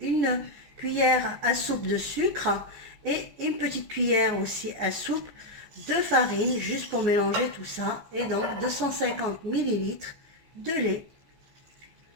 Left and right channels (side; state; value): left; late; 15 ms